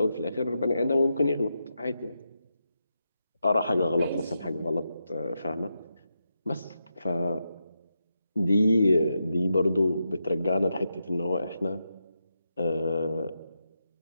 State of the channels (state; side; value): inverted; both; correlation -0.86